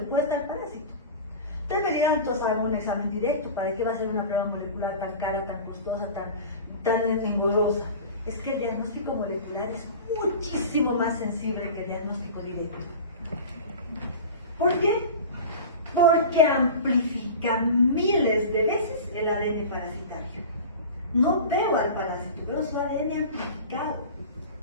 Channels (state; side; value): inverted; both; correlation -0.33